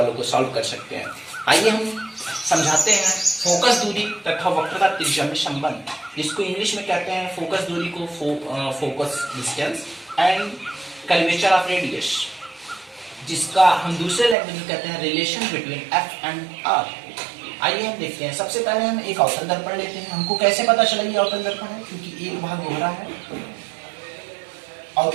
को सॉल्व कर सकते हैं। आइए हम समझाते हैं फोकस दूरी तथा वक्रता त्रिज्या में संबंध, जिसको इंग्लिश में कहते हैं फोकस दूरी को focus distance and curvature of radius, जिसका हम दूसरे लैंग्वेज में कहते हैं relation between F and R. आइए हम देखते हैं। सबसे पहले हम एक अवतल दर्पण लेते हैं। हमको कैसे पता चला ये अवतल दर्पण है? क्योंकि एक भाग उभरा है और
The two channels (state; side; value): drops out; left; at 14.4 s